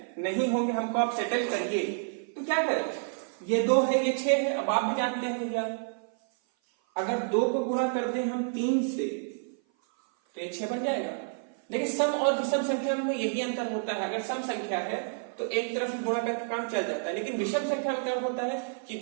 नहीं होंगे, हमको आप सेटल करिए। तो क्या करें? ये 2 है, ये 6 है। अब आप भी जानते हैं भैया अगर 2 को गुणा कर दें हम 3 से तो ये 6 बन जाएगा। लेकिन सम और विषम संख्या में यही अंतर होता है। अगर सम संख्या है तो एक तरफ गुणा करके काम चल जाता है, लेकिन विषम संख्या में क्या होता है कि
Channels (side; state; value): left; silent; 56 dB below the other